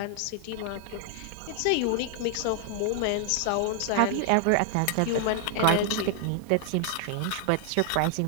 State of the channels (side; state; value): both; different; correlation 0.00